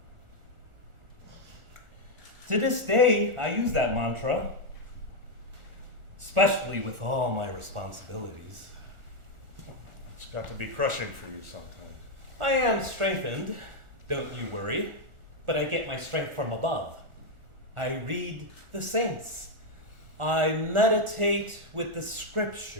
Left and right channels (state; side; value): late; left; 1.4 ms